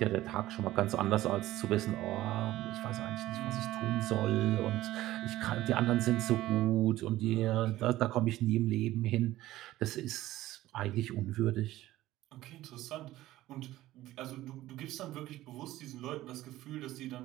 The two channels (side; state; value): left; quieter; 15.6 dB